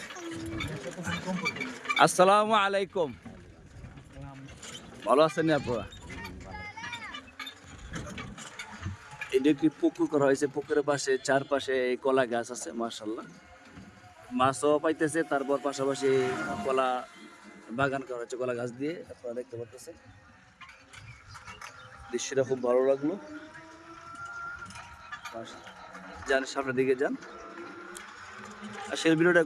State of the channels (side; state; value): both; identical; correlation 1.00